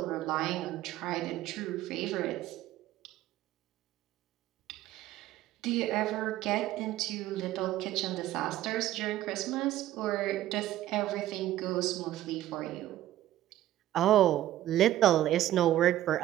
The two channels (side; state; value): left; quieter; 13.8 dB